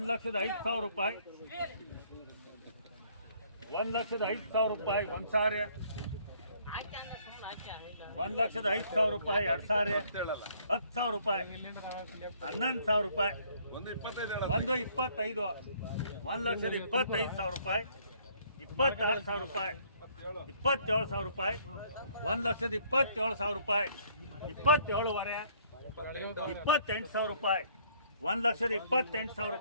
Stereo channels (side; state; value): both; inverted; correlation -0.62